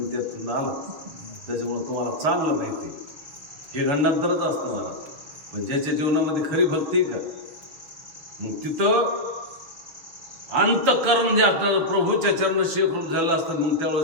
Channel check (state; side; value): late; left; 6.8 ms